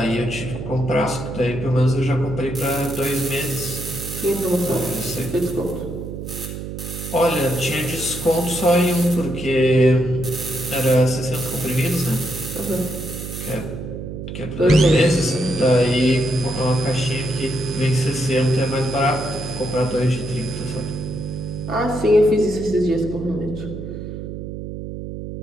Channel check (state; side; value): noise; right; hum, 8 dB below the sound